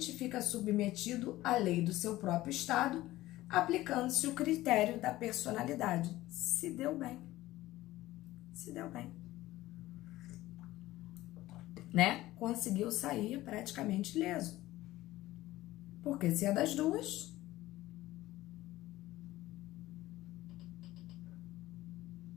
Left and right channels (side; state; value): right; quieter; 16.7 dB